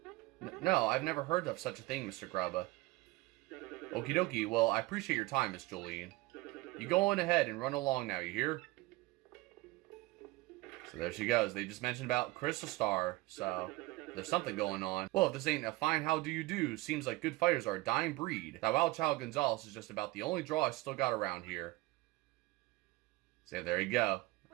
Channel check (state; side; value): quieter; left; 20.7 dB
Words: No, I've never heard of such a thing, Mr. Grubba. Okie dokie, well, I appreciate your time, Miss Jolene. You go on ahead and run along now, you hear? So there she goes. They just mentioned about Crystal Star, so there's something going on. Well, if this ain't a fine how do you do, seems like good fighters are a dying breed. That wild child Gonzalez is just about the only draw I still got around here. So there you go.